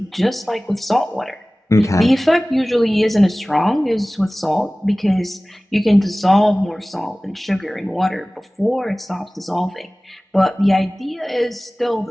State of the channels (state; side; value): normal; both; correlation 0.98